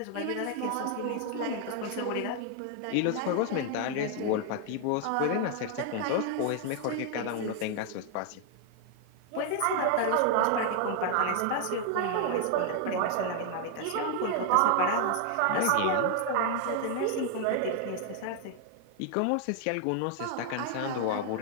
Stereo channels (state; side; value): different; both; correlation 0.00